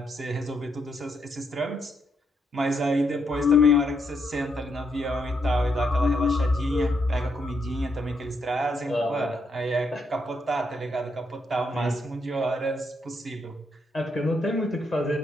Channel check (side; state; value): both; normal; correlation 0.77